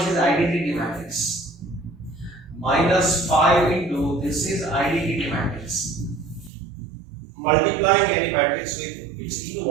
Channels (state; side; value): drops out; left; at 6.5 s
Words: is identity matrix, minus 5 into this is identity matrix. Multiplying any matrix with its